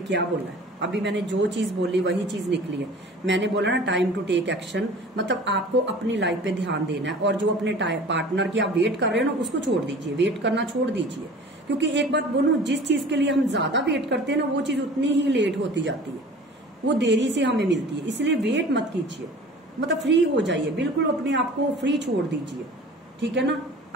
बोला है, अभी मैंने जो चीज बोली वही चीज निकली है। मैंने बोला ना टाइम टू टेक एक्शन, मतलब आपको अपनी लाइफ पे ध्यान देना है, और जो अपने पार्टनर की आप वेट कर रहे हो ना उसको छोड़ दीजिए, वेट करना छोड़ दीजिए। क्योंकि एक बात बोलूं, जिस चीज के लिए हम ज्यादा वेट करते हैं ना, वो चीज उतनी ही लेट होती जाती है, वो देरी से हमें मिलती है। इसलिए वेट मत कीजिए, मतलब फ्री हो जाइए, बिल्कुल अपने आप को फ्री छोड़ दीजिए। ठीक है ना,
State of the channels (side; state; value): both; normal; correlation 0.43